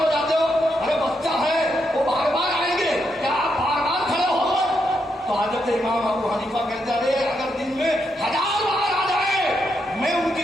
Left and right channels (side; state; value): both; normal; correlation 0.81